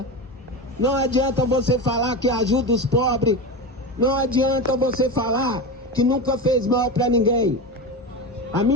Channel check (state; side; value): normal; both; correlation 0.22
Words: Não adianta você falar que ajuda os pobres. Não adianta você falar que nunca fez mal para ninguém. A